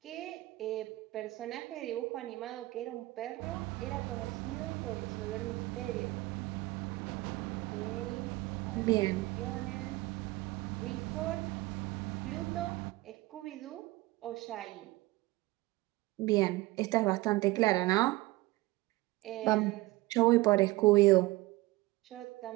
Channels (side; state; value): left; quieter; 20.3 dB